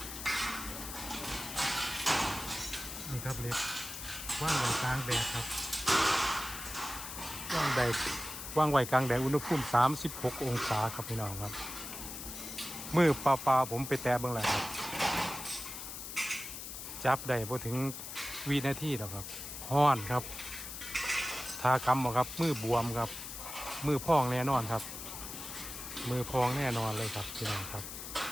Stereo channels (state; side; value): noise; left; hiss, 9 dB below the sound